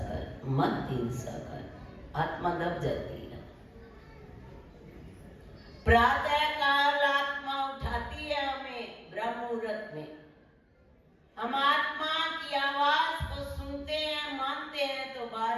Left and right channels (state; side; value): identical; both; correlation 1.00